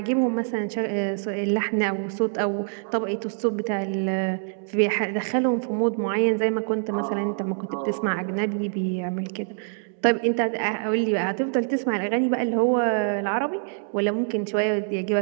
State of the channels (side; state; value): left; silent; digital silence